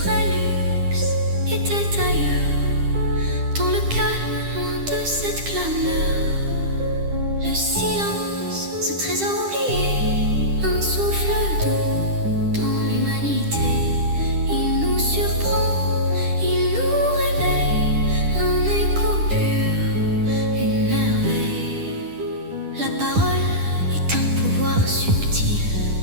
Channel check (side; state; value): left; late; 10 ms